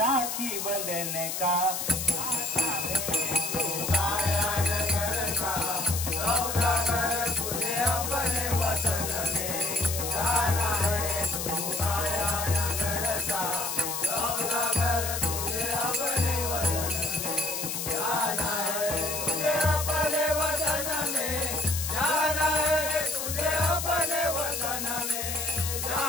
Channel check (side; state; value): left; noise; hiss, 3 dB below the sound